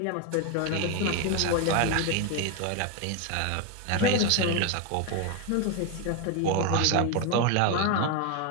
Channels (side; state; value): both; different; correlation 0.02